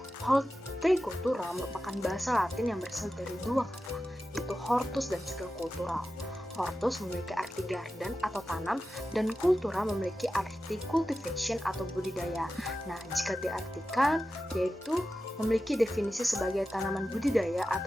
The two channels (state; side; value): normal; both; correlation 0.92